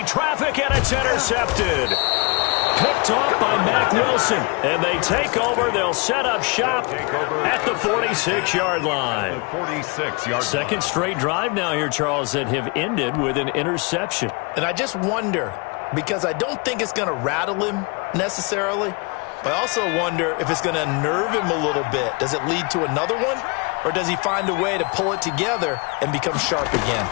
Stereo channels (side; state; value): right; quieter; 30.1 dB